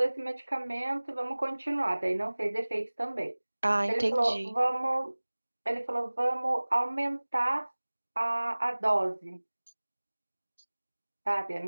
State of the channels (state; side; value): inverted; both; correlation -1.00